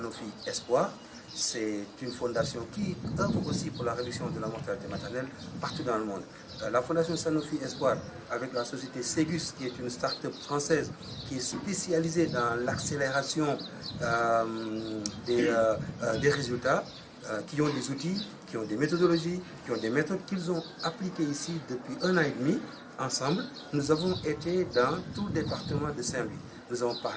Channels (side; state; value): both; identical; correlation 1.00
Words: Espoir. C'est une fondation qui œuvre aussi pour la réduction de la mortalité maternelle partout dans le monde. La fondation Sanofi Espoir, avec la société Ségus, qui est une start-up française qui est spécialisée dans l'accélération des résultats, qui ont des outils, qui ont des méthodologies, qui ont des méthodes qu'ils ont appliquées ici depuis 1 an et demi. Ensemble, nous avons été dans tout le département de Saint-Louis. Nous avons